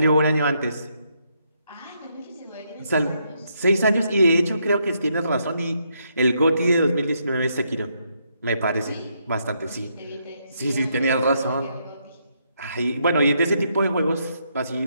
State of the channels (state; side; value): inverted; both; correlation -0.76